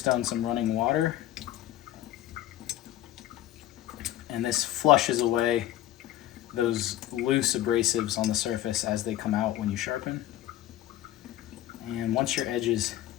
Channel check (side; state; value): right; quieter; 13.7 dB